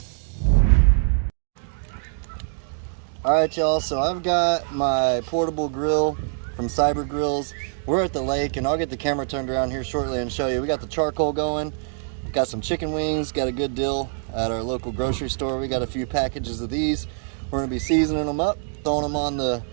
Alright y'all, so I've got my portable grill from Cyber Grills. We're at the lake and I'll get the camera turned around here shortly and show you. We got the charcoal going, got some chicken wings, got a good deal at our local grocery store. We got a few packages of these. We're gonna be seasoning them up, throwing them on the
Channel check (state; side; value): silent; left; digital silence